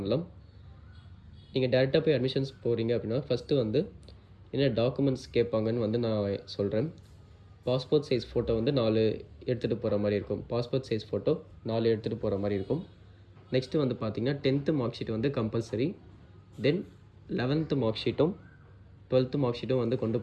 நீங்கள் டேரெக்டாக போய் அட்மிஷன்ஸ் போகிறீங்க அப்படின்னா ஃபஸ்ட்டு வந்து என்ன டாக்குமெண்ட்ஸ் கேட்பாங்கன்னு வந்து நான் சொல்கிறேன். பாஸ்போர்ட் சைஸ் ஃபோட்டோ வந்து 4 எடுத்துகிட்டு போகிற மாதிரி இருக்கும். பாஸ்போர்ட் சைஸ் ஃபோட்டோ 4 எடுத்துகிட்டு போகிற மாதிரி இருக்கும். நெக்ஸ்ட்டு வந்து பார்த்திங்கன்னா 10th மார்க் ஷீட் வந்து கம்பல்சரி. தென் 11th மார்க் ஷீட்டும் 12th மார்க் ஷீட்டும் வந்து கொண்டு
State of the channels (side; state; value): both; identical; correlation 1.00